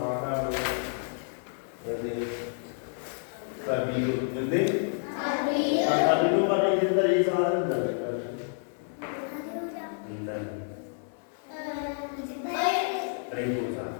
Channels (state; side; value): silent; right; 56 dB below the other